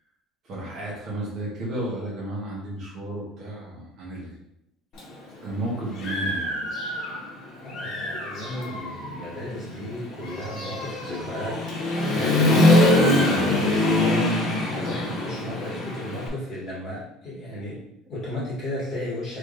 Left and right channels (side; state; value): both; normal; correlation 0.48